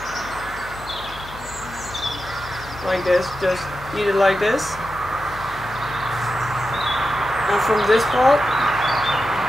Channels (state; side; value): noise; left; hum, 16 dB below the sound